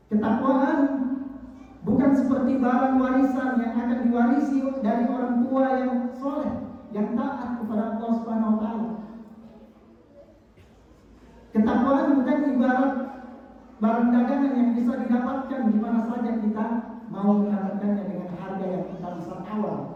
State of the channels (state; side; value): identical; both; correlation 1.00